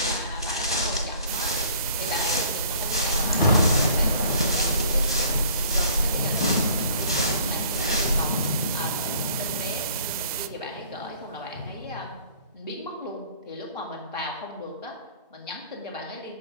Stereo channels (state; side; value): inverted; both; correlation -0.53